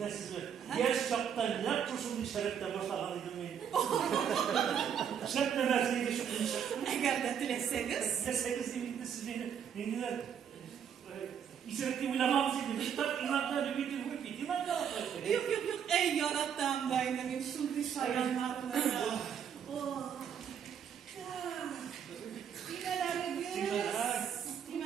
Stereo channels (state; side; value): quieter; left; 8.1 dB